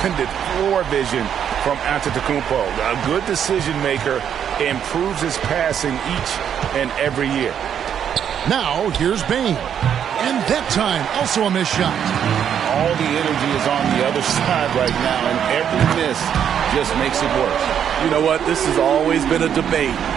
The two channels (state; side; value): quieter; left; 8.8 dB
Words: floor vision from Antetokounmpo? A good decision maker, improves his passing each and every year. Now, here's Bane. And that time, also a missed shot. All the energy is on the other side right now, and every miss just makes it worse. You know what? This has always been a debate.